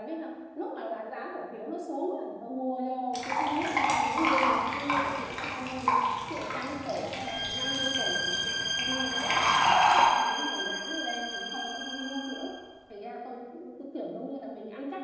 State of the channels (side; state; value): both; identical; correlation 1.00